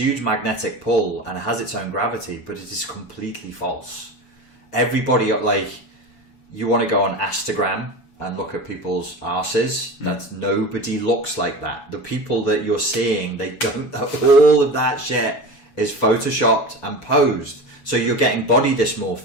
magnetic pull and has its own gravity, but it is completely false. Everybody, like, you want to go on Instagram and look at people's arses. That nobody looks like that. The people that you're seeing, they don't. All of that shit is photoshopped and posed. So you're getting body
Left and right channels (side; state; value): right; late; 7.1 ms